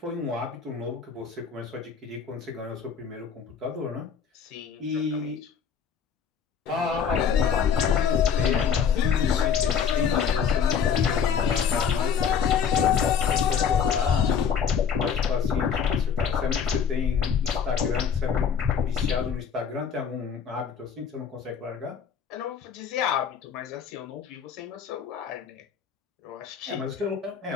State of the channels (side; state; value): right; quieter; 7.1 dB